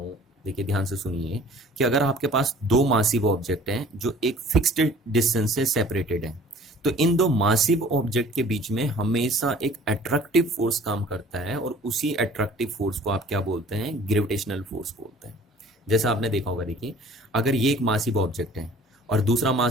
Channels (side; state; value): both; normal; correlation 0.50